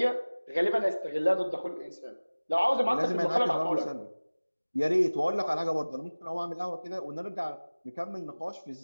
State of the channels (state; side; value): inverted; both; correlation -1.00